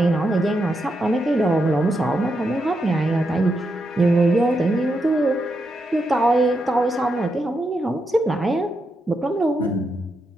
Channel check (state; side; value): normal; both; correlation 0.84